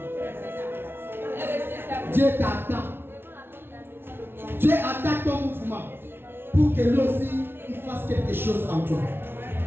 Dieu t'attend. Dieu attend ton mouvement pour que lui aussi il fasse quelque chose en toi.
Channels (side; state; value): left; late; 0.11 ms